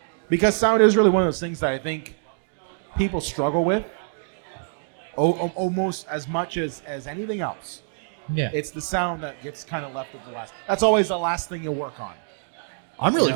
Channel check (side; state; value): left; silent; digital silence